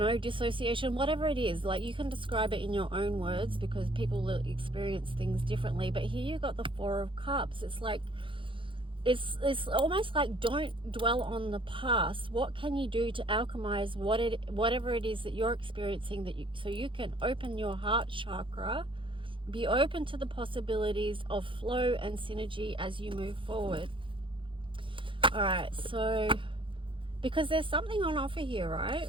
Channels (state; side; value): late; left; 0.25 ms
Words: know, dissociation, whatever it is, like you can describe it in your own words because people will experience things differently. But here you got the 4 of Cups. It's like, it's almost like, don't dwell on the past. What can you do to alchemize whatever it is that you're experiencing, so you can open your heart chakra, be open to the possibilities of flow and synergy as you move forward. All right, so because there's something on offer here, right?